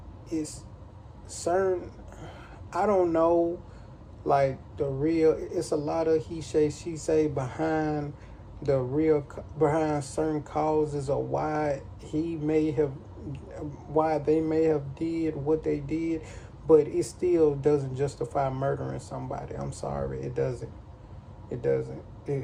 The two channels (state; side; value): identical; both; correlation 1.00